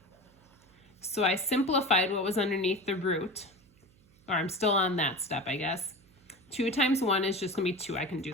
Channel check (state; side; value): noise; right; hum, 30 dB below the sound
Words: So I simplified what was underneath the root, or I'm still on that step, I guess. 2 times 1 is just going to be 2. I can